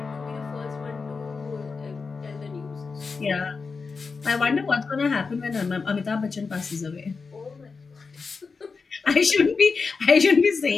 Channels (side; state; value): right; quieter; 4.7 dB